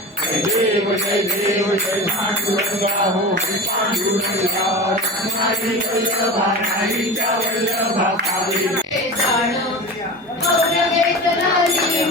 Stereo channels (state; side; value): normal; both; correlation 0.30